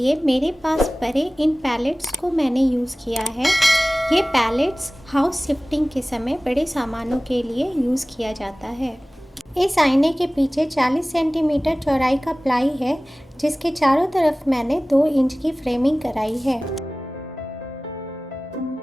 मेरे पास पड़े इन पैलेट्स को मैंने यूज़ किया है। ये पैलेट्स हाउस शिफ्टिंग के समय बड़े सामानों के लिए यूज़ किया जाता है। इस आईने के पीछे 40 सेंटीमीटर चौड़ाई का प्लाई है, जिसके चारों तरफ मैंने 2 इंच की फ्रेमिंग कराई है।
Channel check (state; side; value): normal; both; correlation 0.98